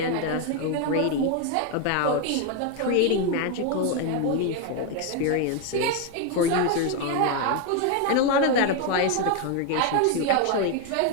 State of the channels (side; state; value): both; different; correlation 0.01